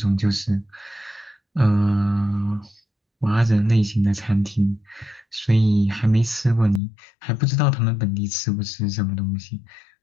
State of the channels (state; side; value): drops out; right; at 6.8 s